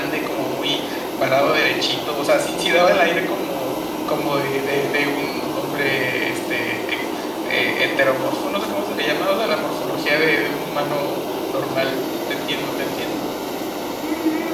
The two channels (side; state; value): both; identical; correlation 1.00